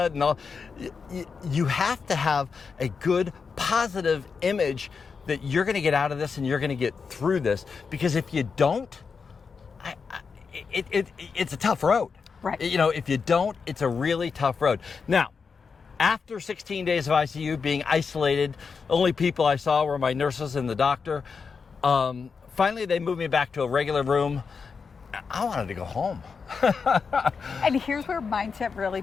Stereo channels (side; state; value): right; quieter; 5.4 dB